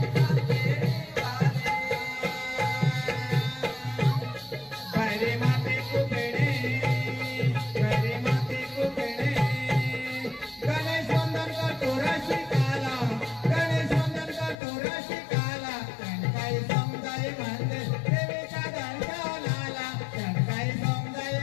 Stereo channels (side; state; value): right; drops out; at 14.6 s